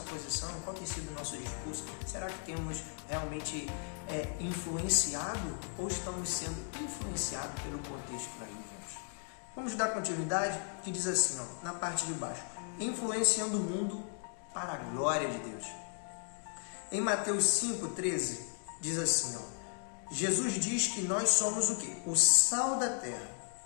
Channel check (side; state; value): right; silent; 54 dB below the other